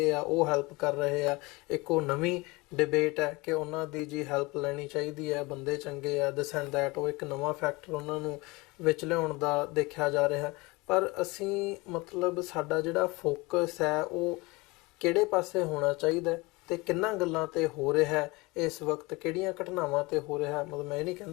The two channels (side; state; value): right; quieter; 24.0 dB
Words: ਆ ਉਹ ਹੈਲਪ ਕਰ ਰਹੇ ਆ। ਇੱਕ ਉਹ ਨਵੀਂ ਡਿਬੇਟ ਹੈ ਕਿ ਉਹਨਾਂ ਦੀ ਜੀ ਹੈਲਪ ਲੈਣੀ ਚਾਹੀਦੀ ਹੈ, ਬੰਦੇ ਚੰਗੇ ਆ, ਦਿਸ ਐਂਡ ਦੈਟ, ਉਹ ਇੱਕ ਨਵਾਂ ਫੈਕਟਰ ਉਹਨਾਂ ਨੂੰ ਵਿੱਚ ਲਿਆਉਣ ਦਾ ਦੇਖਿਆ ਜਾ ਰਿਹਾ। ਪਰ ਅਸੀਂ ਮਤਲਬ ਸਾਡਾ ਜਿਹੜਾ ਫੋਕਸ ਹੈ ਉਹ ਕਿਹੜੇ ਪਾਸੇ ਹੋਣਾ ਚਾਹੀਦਾ ਤੇ ਕਿੰਨਾ ਗੱਲਾਂ ਤੇ ਹੋ ਰਿਹਾ ਇਸ ਵਕਤ, ਕਿਹੜੀਆਂ ਘਟਨਾਵਾਂ ਤੇ ਹੋ ਰਿਹਾ? ਮਤਲਬ ਮੈਂ ਇਹ ਨਹੀਂ